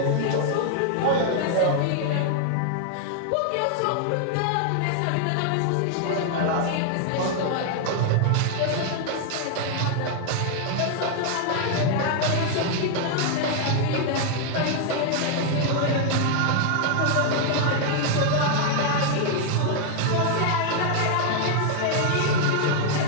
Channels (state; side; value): different; both; correlation 0.00